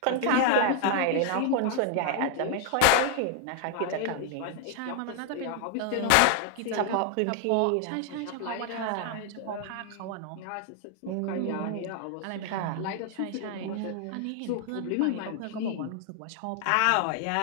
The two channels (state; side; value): different; both; correlation 0.00